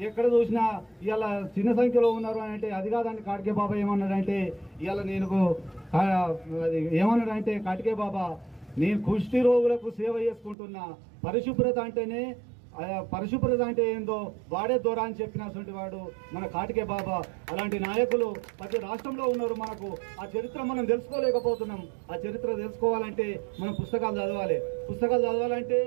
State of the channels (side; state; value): left; drops out; at 10.6 s